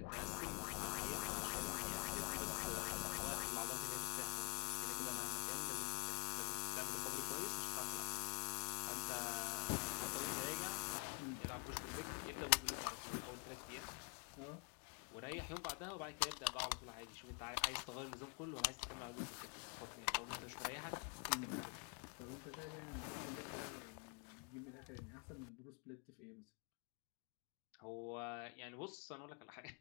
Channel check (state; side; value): quieter; right; 27.7 dB